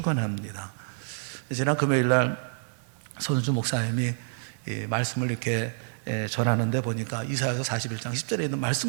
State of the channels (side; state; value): left; silent; digital silence